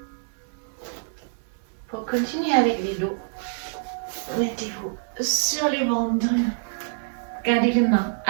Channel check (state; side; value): silent; left; digital silence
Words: continuez avec les dos. Mettez-vous sur les ventres. Gardez les mains